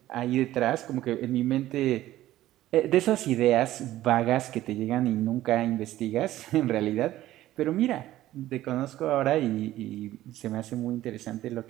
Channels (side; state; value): left; quieter; 14.6 dB